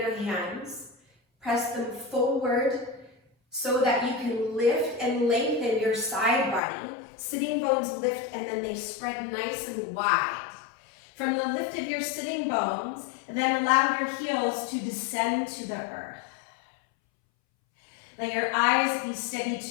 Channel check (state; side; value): drops out; right; at 6.6 s